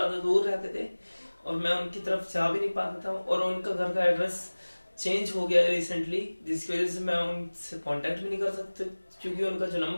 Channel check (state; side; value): inverted; both; correlation -1.00